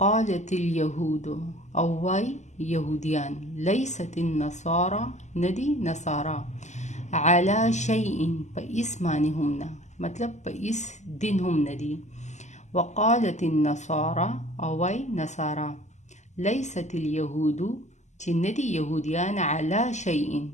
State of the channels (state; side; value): late; right; 0.34 ms